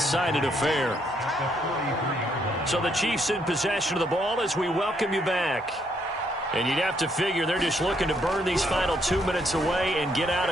affair. So the Chiefs in possession of the ball as we welcome you back. And you'd have to figure they're just looking to burn these final 2 minutes away and get out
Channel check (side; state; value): both; normal; correlation 0.72